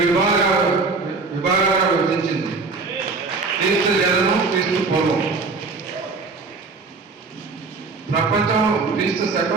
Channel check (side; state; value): left; quieter; 4.2 dB